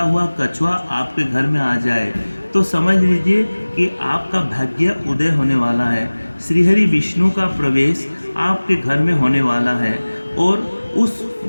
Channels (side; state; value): both; inverted; correlation -1.00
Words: हुआ कछुआ आपके घर में आ जाए तो समझ लीजिए कि आपका भाग्य उदय होने वाला है। श्रीहरि विष्णु का प्रवेश आपके घर में होने वाला है और उस